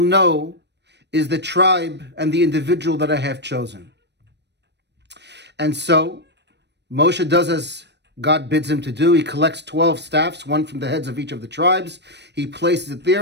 know is the tribe and the individual that I have chosen. And so Moshe does as God bids him to do. He collects 12 staffs, one from the heads of each of the tribes. He places it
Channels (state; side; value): late; left; 0.50 ms